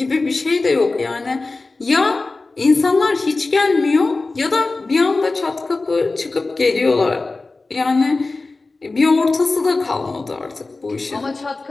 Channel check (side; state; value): right; quieter; 3.5 dB